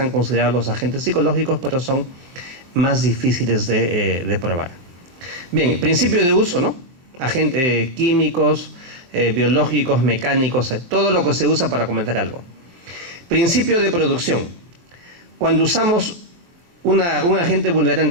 considerados los agentes psicológicos, pero son más difíciles de probar. Bien, principio de uso, ¿no? Agentes químicos, biológicos, mecánicos, todo lo que se usa para cometer algo. Principio de producción. Cuando usamos un agente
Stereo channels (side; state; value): left; late; 23 ms